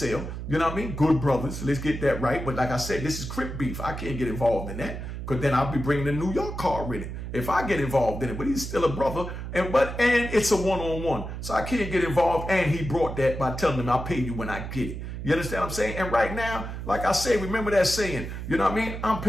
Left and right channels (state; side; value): noise; right; hum, 7 dB below the sound